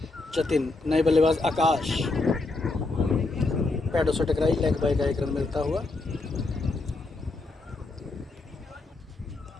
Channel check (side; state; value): right; quieter; 3.3 dB